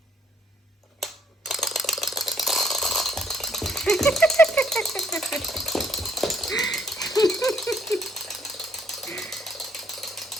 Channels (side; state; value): both; normal; correlation 0.67